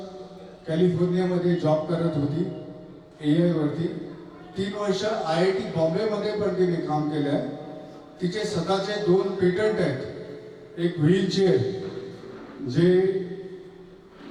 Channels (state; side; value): identical; both; correlation 1.00